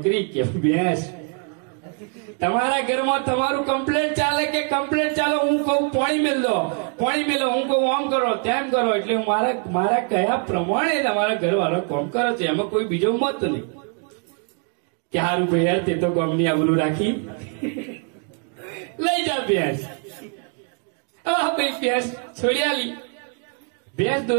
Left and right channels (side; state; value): left; quieter; 39.5 dB